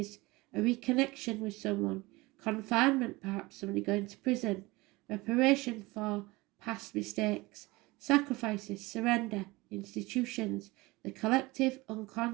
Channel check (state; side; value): quieter; left; 22.1 dB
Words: A reconnection with someone. Confinement, perhaps somebody going to prison. Reparation for past mistakes. Sacrifices, surrender, institutions. The collective